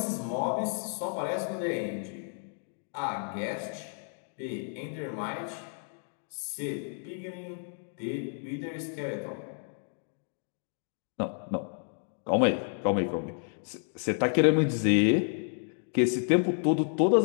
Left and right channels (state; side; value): silent; right; 57 dB below the other